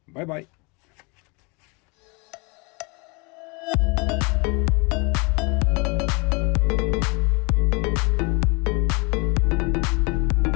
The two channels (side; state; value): right; quieter; 30.1 dB